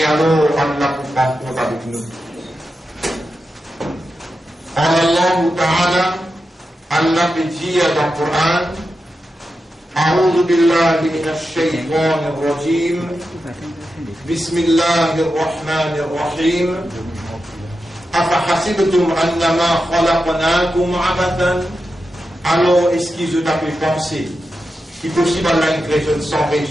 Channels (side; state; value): both; normal; correlation 0.89